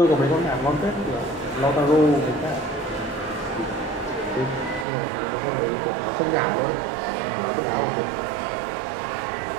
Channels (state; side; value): drops out; left; at 4.9 s